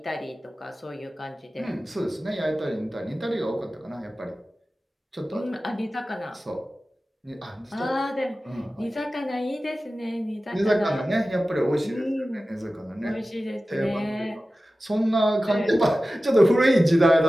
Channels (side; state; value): both; normal; correlation 0.95